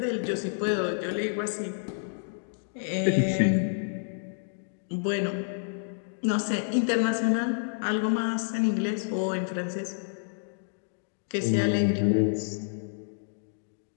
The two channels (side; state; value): right; silent; digital silence